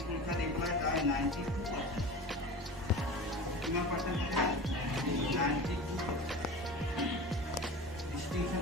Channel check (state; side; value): normal; both; correlation 0.33